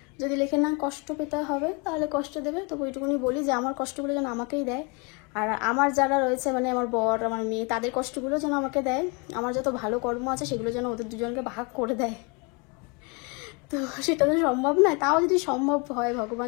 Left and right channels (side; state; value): right; quieter; 31.2 dB